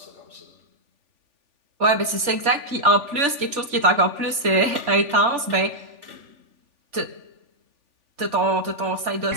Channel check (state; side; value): late; left; 3.4 ms